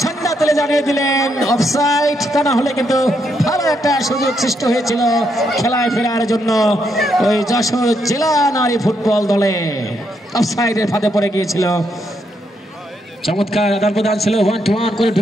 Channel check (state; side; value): normal; both; correlation 0.78